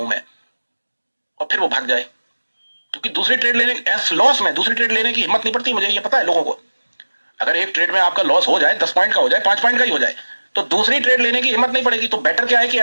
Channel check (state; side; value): inverted; both; correlation -1.00